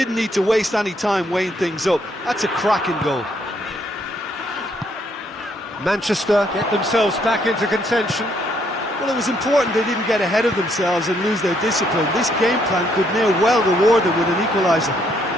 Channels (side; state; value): both; normal; correlation 0.71